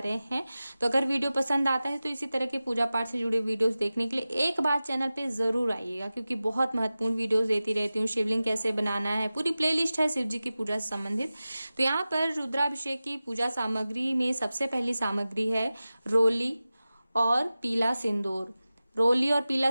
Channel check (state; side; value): inverted; both; correlation -0.96